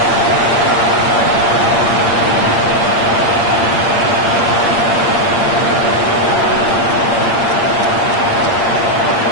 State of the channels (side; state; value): right; late; 8.7 ms